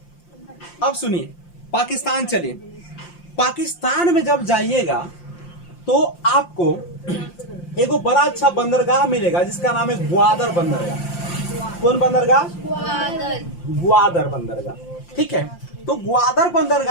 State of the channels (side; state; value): right; late; 5.7 ms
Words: अब सुनिए, पाकिस्तान चलिए। पाकिस्तान में जब जाइएगा तो आपको एगो बड़ा अच्छा बंदरगाह मिलेगा जिसका नाम है ग्वादर बंदरगाह। कौन बंदरगाह? ग्वादर बंदरगाह। ठीक है, तो ग्वादर